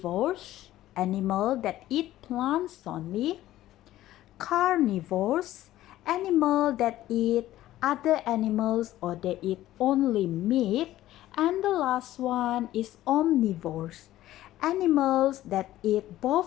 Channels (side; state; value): right; quieter; 14.5 dB